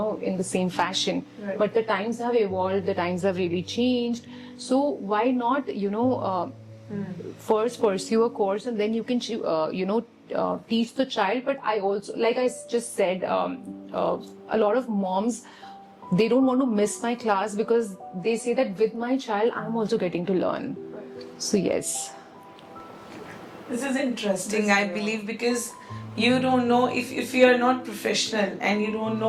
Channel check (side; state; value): both; identical; correlation 1.00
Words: in the same fashion. Right. But the times have evolved, the times have really changed. So why not, first pursue a course and then you can, teach the child. But I also, like I just said, a lot of moms, they don't want to miss my class because they say that with my child, I'm also getting to learn. So yes. This is interesting, I believe, because you don't know if you are not professional and you don't